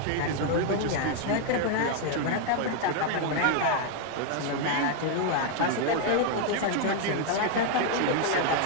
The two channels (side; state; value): both; different; correlation 0.00